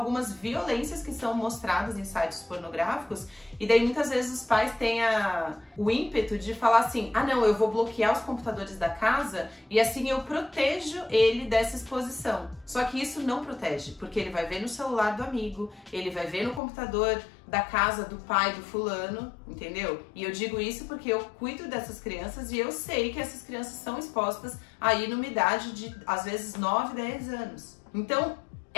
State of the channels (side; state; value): right; drops out; at 16.6 s